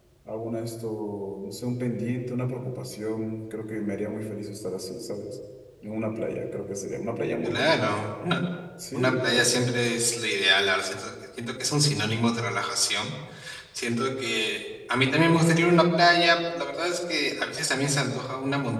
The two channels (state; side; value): identical; both; correlation 1.00